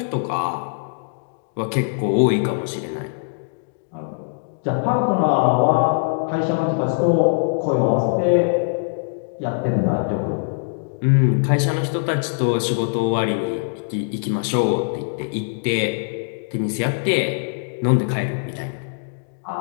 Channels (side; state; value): right; silent; digital silence